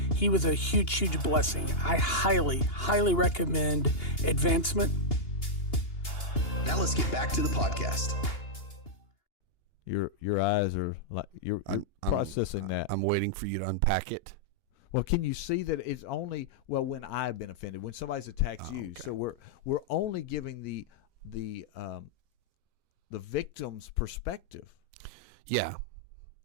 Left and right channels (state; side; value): late; right; 2.8 ms